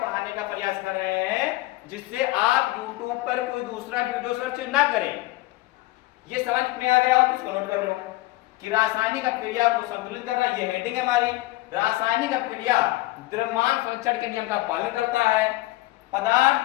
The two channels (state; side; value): quieter; right; 19.2 dB